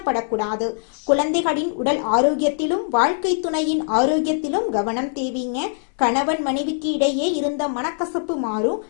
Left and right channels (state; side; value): silent; right; 63 dB below the other